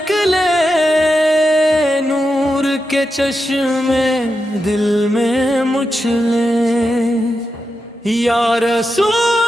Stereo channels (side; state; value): both; normal; correlation 0.88